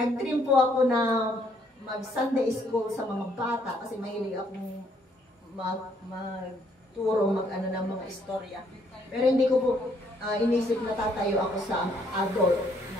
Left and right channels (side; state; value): both; normal; correlation 0.68